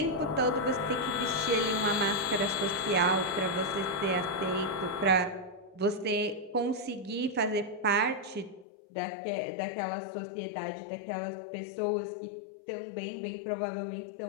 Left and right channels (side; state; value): right; drops out; at 8.7 s